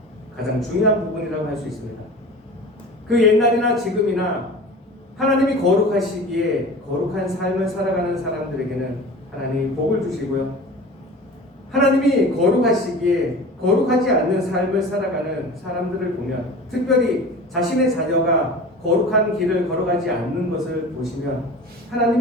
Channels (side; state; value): both; normal; correlation 0.37